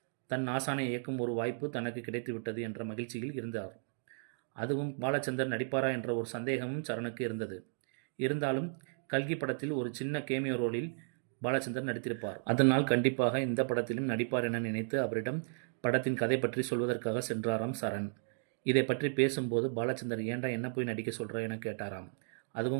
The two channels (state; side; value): silent; left; digital silence